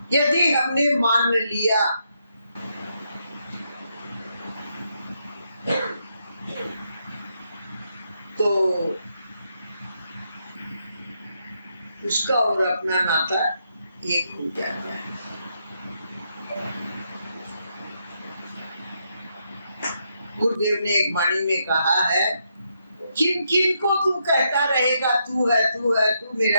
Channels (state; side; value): inverted; both; correlation -0.79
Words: यदि हमने मान लिया तो उसका और अपना नाता एक हो जाता है। गुरुदेव ने एक वाणी में कहा है, किन किन को तू कहता रहेगा तू है, तू है, तू